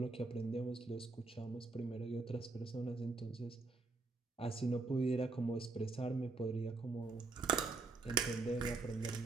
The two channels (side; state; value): left; quieter; 3.6 dB